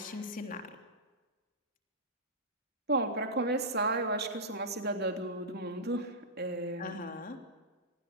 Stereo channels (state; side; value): normal; both; correlation -0.14